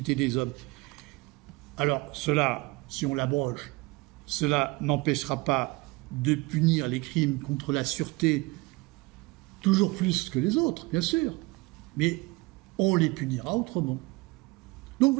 des hommes. Alors cela, si on l'abroge, cela n'empêchera pas de punir les crimes contre la sûreté toujours plus que les autres, bien sûr, mais on les punira autrement. Donc vous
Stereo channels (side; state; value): left; quieter; 23.6 dB